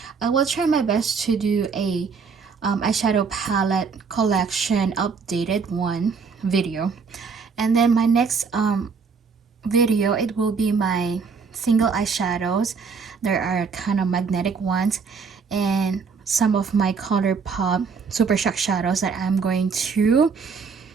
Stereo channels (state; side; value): quieter; left; 5.4 dB